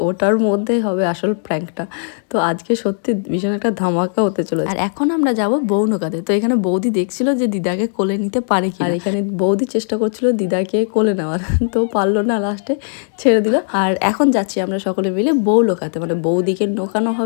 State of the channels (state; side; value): silent; right; digital silence